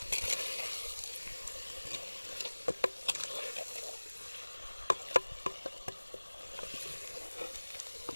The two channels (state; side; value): inverted; both; correlation -1.00